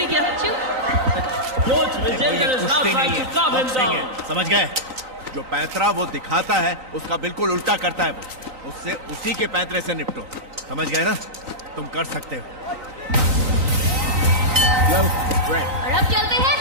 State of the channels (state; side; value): late; left; 3.9 ms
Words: किया. Coach Vijender is now trying to calm him down. समझ गए? जो पैंतरा वो दिखाता है उसका बिल्कुल उल्टा करता है वो. उससे उसी के पैंतरे से निपटो. समझ गए ना? तुम कर सकते हो. और अब चलते हैं